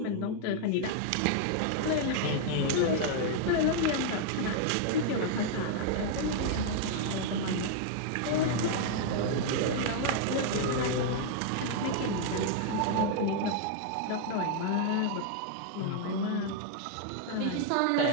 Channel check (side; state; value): both; different; correlation 0.00